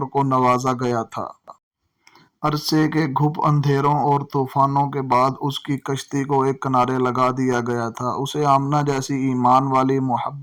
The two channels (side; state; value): both; identical; correlation 1.00